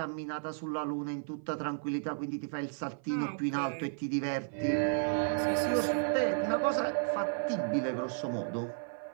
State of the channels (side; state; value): left; silent; 56 dB below the other